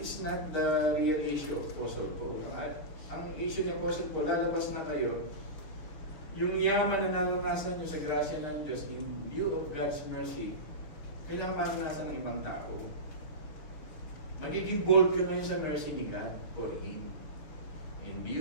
not the real issue of Apostle Paul. Ang issue ni Apostle Paul, lalabas na kayo, yung yaman na naranasan nyo sa grasya ng Diyos in view of God's mercy, kailangan maranasan ng ibang tao. Magiging bold ka ngayon sa mercy ni God for Him. In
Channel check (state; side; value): late; right; 6.2 ms